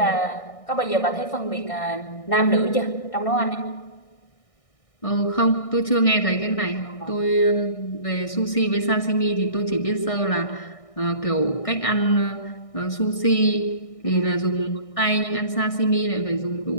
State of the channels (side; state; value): right; late; 1.6 ms